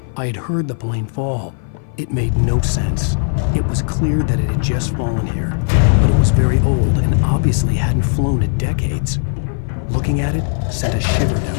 I had heard the plane fall. It made no sense. It was clear that it had just fallen here, but it was very old and obviously hadn't flown in decades. Looking at it sent a shiver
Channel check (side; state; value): right; silent; 56 dB below the other